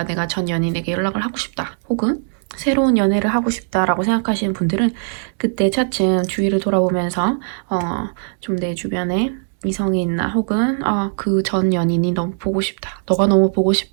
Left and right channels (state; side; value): silent; left; 66 dB below the other